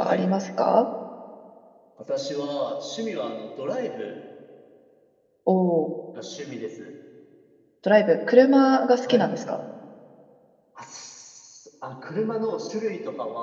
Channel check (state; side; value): identical; both; correlation 1.00